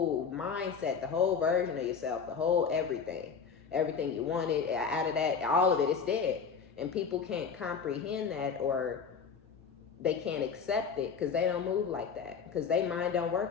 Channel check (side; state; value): right; quieter; 6.1 dB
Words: mindset, the whole version of yourself, the whole everything you wanted out of that, all of it is dead. And people can't comprehend that, or they can't accept it because they don't move like that, because their mind don't